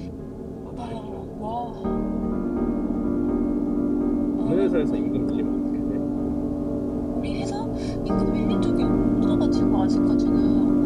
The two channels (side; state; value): both; identical; correlation 1.00